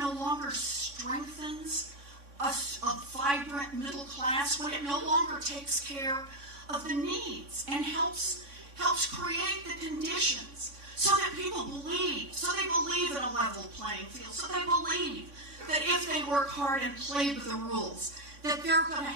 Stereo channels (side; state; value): left; late; 3.6 ms